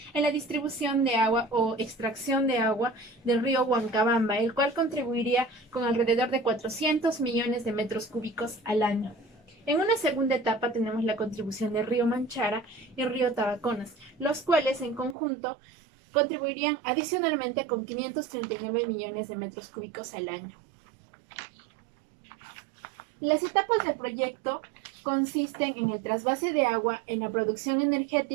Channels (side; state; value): left; drops out; at 15.2 s